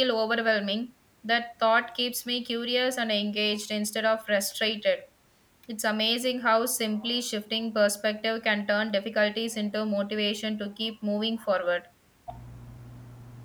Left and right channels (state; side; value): identical; both; correlation 1.00